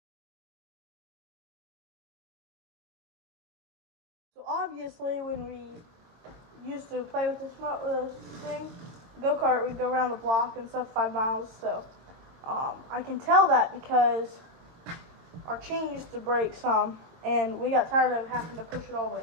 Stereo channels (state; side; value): late; left; 22 ms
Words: So obviously, when we used to play with this thing, go-kart, we'd go around the block and stuff, 5 miles. So I can tell that because our chain used to break some, and we got tired of having to push it all the